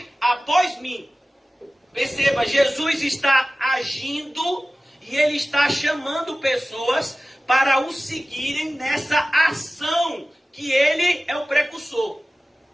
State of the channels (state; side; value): normal; both; correlation 0.97